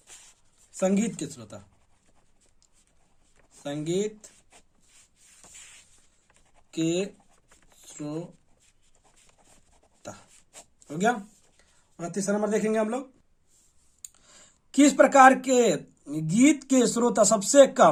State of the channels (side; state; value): both; identical; correlation 1.00